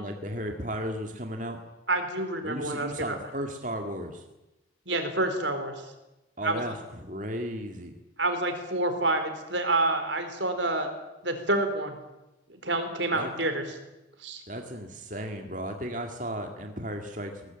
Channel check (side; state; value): both; normal; correlation -0.11